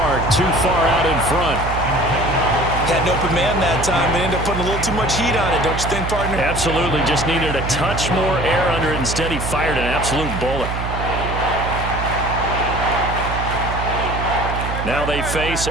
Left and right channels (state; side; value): noise; right; hum, 4 dB below the sound